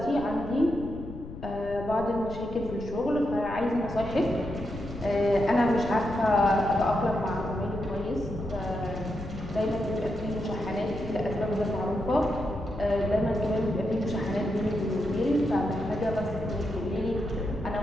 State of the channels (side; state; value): left; noise; rumble, 12 dB below the sound